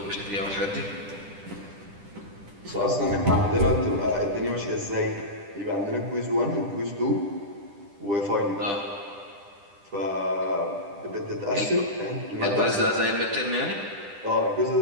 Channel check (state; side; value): late; left; 10 ms